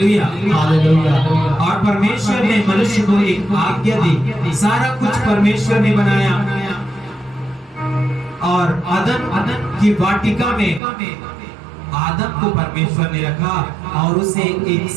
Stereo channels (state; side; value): drops out; left; at 10.8 s